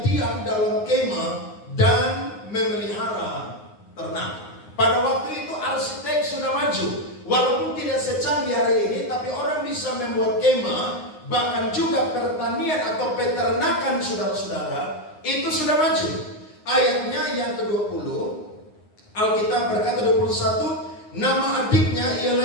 diam dalam kemah dan memelihara ternak. Pada waktu itu arsitek sudah maju. Walaupun tidak secanggih hari ini, tapi orang bisa membuat kemah, bahkan juga pertanian atau peternakan saudara-saudara, itu sudah maju. Ayatnya yang ke-20, Alkitab berkata 21, nama adiknya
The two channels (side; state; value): right; late; 9.7 ms